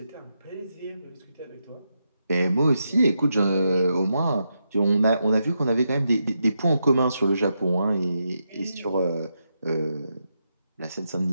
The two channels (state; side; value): inverted; both; correlation -0.84